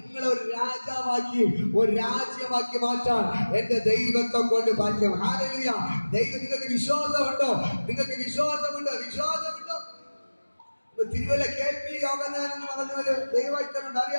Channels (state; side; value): inverted; both; correlation -1.00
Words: ഒരു രാജാവാക്കി, ഒരു രാജ്യമാക്കി മാറ്റാൻ എന്റെ ദൈവത്തെ കൊണ്ട് ഭാഗ്യം. ഹല്ലേലൂയ. ദൈവം നിങ്ങൾക്ക് വിശ്വാസമുണ്ടോ? നിങ്ങൾക്ക് വിശ്വാസമുണ്ടോ? വിശ്വാസമുണ്ടോ? തിരുവല്ല KP യോഗനാഥൻ എന്ന് പറഞ്ഞൊരു ദൈവഭക്തനുണ്ട്.